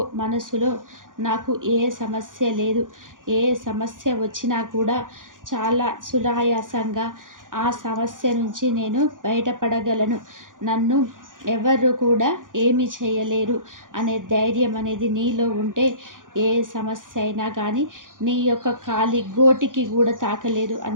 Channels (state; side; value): late; left; 0.89 ms